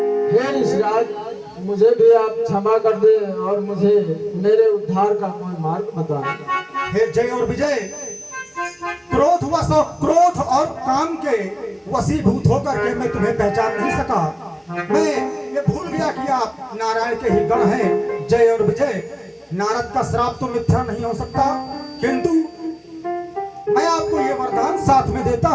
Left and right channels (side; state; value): both; identical; correlation 1.00